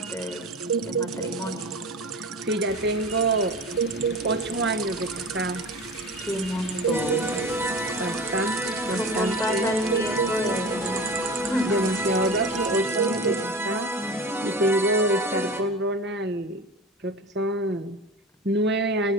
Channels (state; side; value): normal; both; correlation 0.32